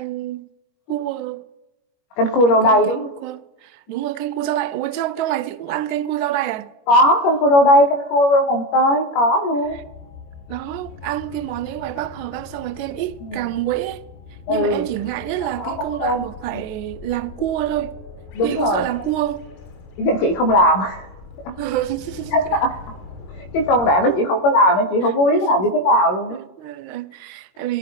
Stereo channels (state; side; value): late; right; 21 ms